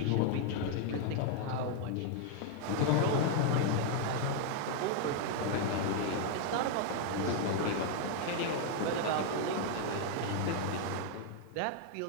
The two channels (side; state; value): both; different; correlation 0.00